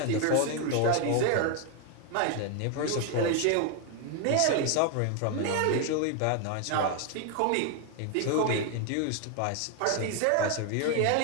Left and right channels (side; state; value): both; different; correlation 0.01